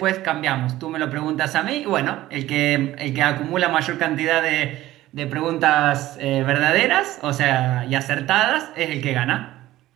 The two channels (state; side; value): quieter; left; 15.6 dB